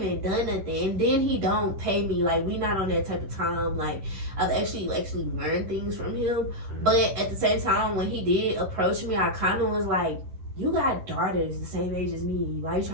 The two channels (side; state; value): left; late; 11 ms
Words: even done nothing. And then he don't pay me. Like, we not on that type of time. Like, I've actually learned things from him. But at the same time, when he did approach me, I kind of was like, you got daughters the same age as me. Why you